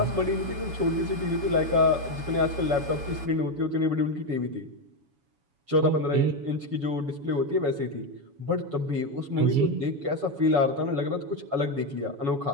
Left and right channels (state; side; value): late; left; 7.1 ms